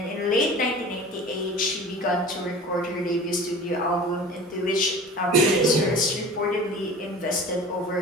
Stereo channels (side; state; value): both; normal; correlation 0.39